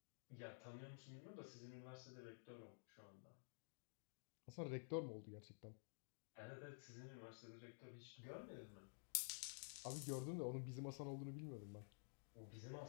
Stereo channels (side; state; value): right; silent; digital silence